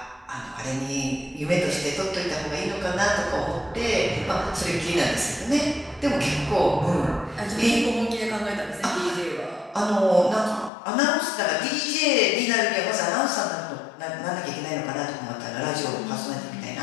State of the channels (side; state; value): right; drops out; at 10.7 s